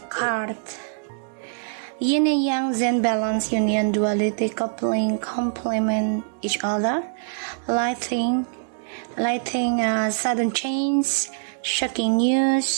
card, Yin and yang, Zen balance, union, duality, coupling, complement each other, lighting, sudden change, shocking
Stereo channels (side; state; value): left; silent; digital silence